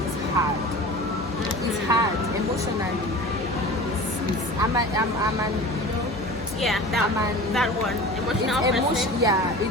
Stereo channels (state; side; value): normal; both; correlation 0.37